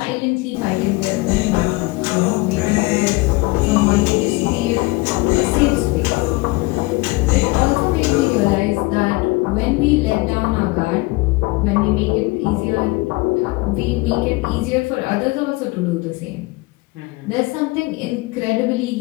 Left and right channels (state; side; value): quieter; right; 23.2 dB